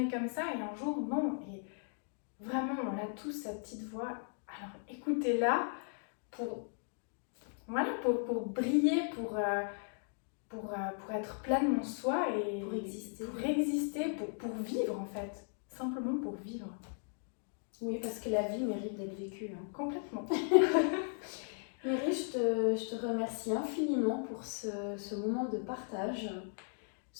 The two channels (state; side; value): silent; right; 53 dB below the other